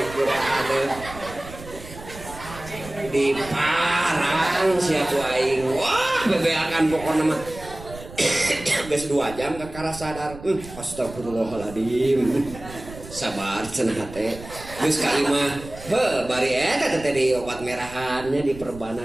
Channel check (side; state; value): right; noise; rumble, 15 dB below the sound